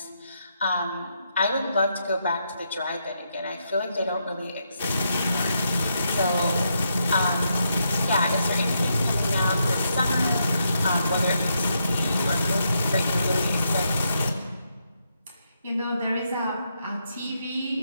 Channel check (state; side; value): inverted; both; correlation -0.80